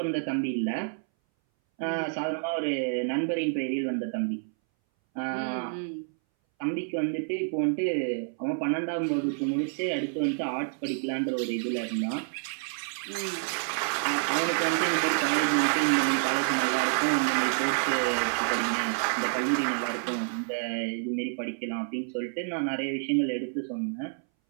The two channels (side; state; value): left; silent; 59 dB below the other